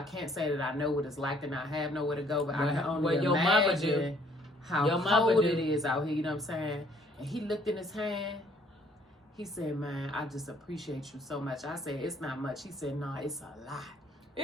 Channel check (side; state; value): both; normal; correlation 0.62